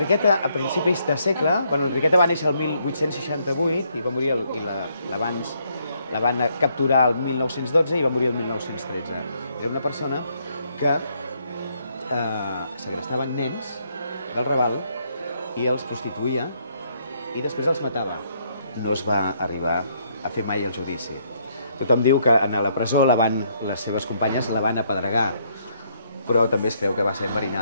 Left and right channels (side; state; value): both; inverted; correlation -0.71